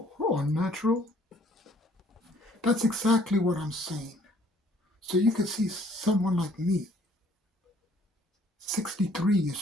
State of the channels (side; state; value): both; normal; correlation 0.60